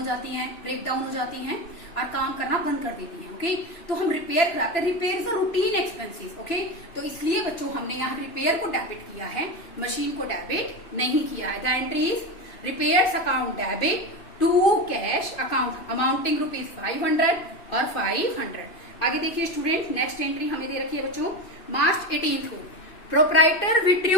जाती हैं, ब्रेक डाउन हो जाती हैं और काम करना बंद कर देती हैं। ओके, तो हम रिपेयर कराते हैं। Repair is a routine expenses. Okay, तो इसलिए बच्चों हमने यहाँ रिपेयर को डेबिट किया है, मशीन को डेबिट नहीं किया है। The entry is repairs account debit to cash account amounting rupees 500 और 500। आगे देखिए स्टूडेंट, नेक्स्ट एंट्री हमें दे रखी है बच्चों मार्च 18 को प्रोप्राइटर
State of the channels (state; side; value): late; right; 2.9 ms